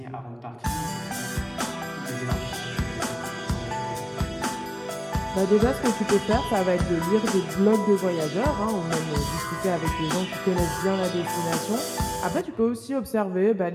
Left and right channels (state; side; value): identical; both; correlation 1.00